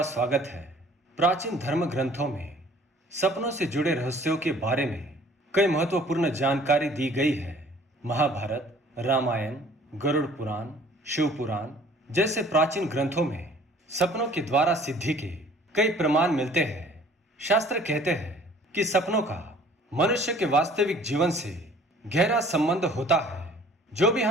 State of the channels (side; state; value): both; normal; correlation 0.53